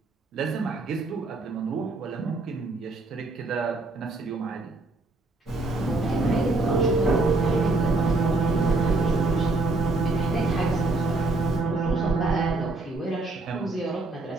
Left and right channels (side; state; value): left; quieter; 3.1 dB